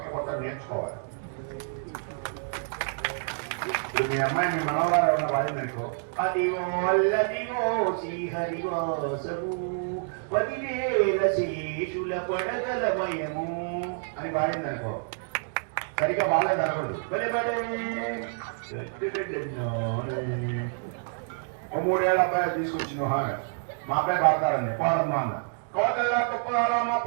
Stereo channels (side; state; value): left; silent; digital silence